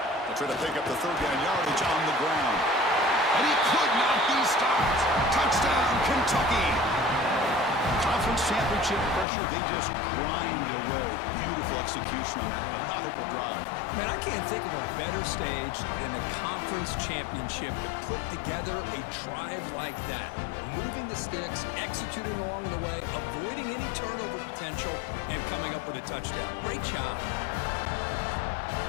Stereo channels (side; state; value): right; drops out; at 9.2 s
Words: They'll try to pick up the 3rd down yardage on the ground. And he could not be stopped. Touchdown, Kentucky. Conference championship pressure, they just grind away. Beautiful execution on that methodical drive. Man, I can't think of a better stage than the conference championship to put together a drive like that. Moving the sticks, executing along the way, avoiding any turnover potential, and coming up with a touchdown. Great job.